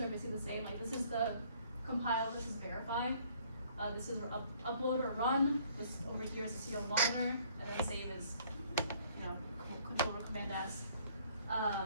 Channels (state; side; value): inverted; both; correlation -0.60